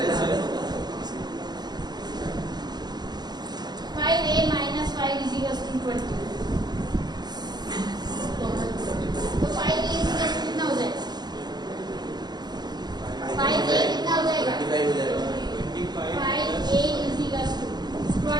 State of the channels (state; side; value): late; left; 0.20 ms